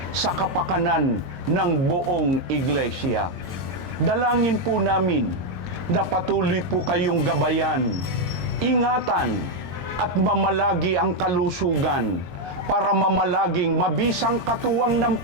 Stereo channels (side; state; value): left; late; 22 ms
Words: sa kapakanan ng buong iglesia. Dalangin po namin na patuloy po kayong gabayan, ingatan at mamalagi ang kalusugan para mamalaging mabisang katuwang ng